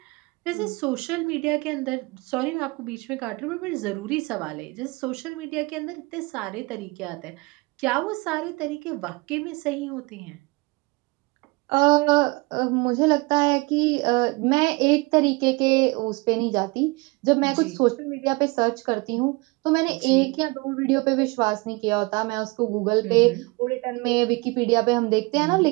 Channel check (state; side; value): quieter; left; 26.2 dB